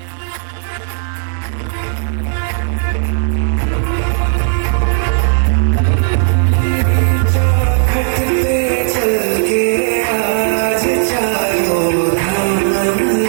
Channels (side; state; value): left; silent; digital silence